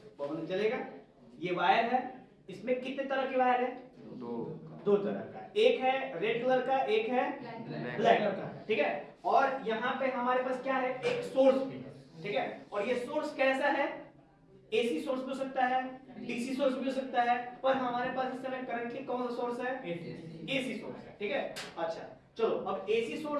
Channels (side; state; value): both; identical; correlation 1.00